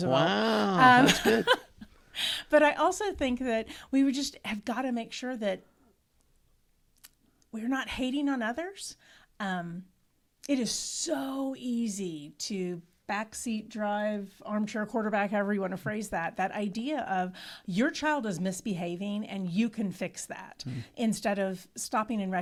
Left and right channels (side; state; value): both; identical; correlation 1.00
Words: Wow, that's good. But I also think that we would just have got to make sure that we're not hating on others. It is so easy to backseat drive, armchair quarterback, however you want to phrase that idea of your child is misbehaving and you can fix that instead of stopping and